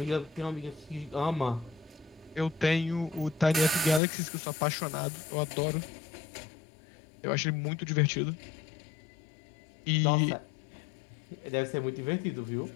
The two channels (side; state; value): right; drops out; at 4.0 s